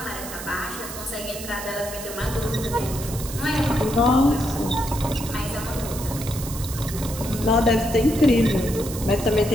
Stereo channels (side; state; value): right; noise; hiss, 10 dB below the sound